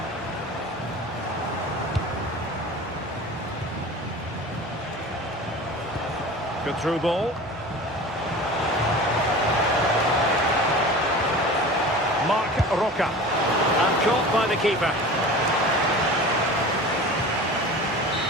Good through ball. Marc Roca. And caught by the keeper.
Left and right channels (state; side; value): normal; both; correlation 0.37